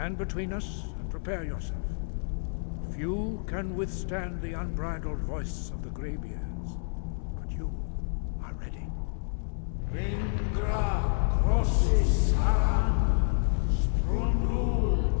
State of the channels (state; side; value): silent; right; digital silence